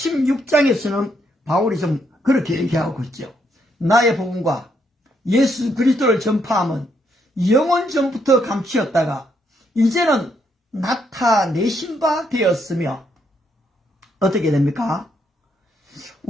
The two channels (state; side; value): normal; both; correlation 0.75